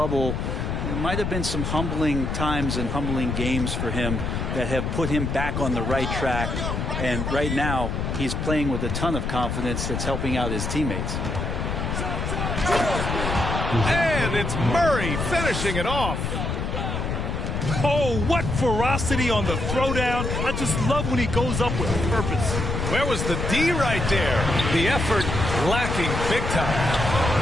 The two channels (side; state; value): left; noise; rumble, 2 dB below the sound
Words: there might have been some humbling times and humbling games for him that have put him back on the right track. And right now, he's playing with a ton of confidence that's helping out his teammates. And it's Murray finishing it off. Oh, what ferocity on the throwdown. I just love when he goes up with purpose. Where was the D right there? The effort lacking big time.